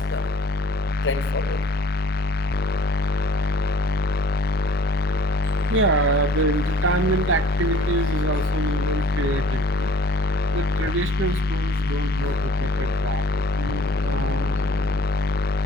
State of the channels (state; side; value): normal; both; correlation 0.54